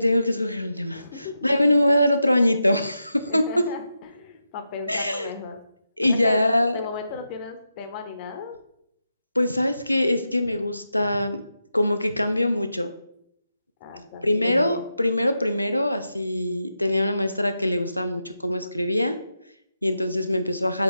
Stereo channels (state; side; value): inverted; both; correlation -0.87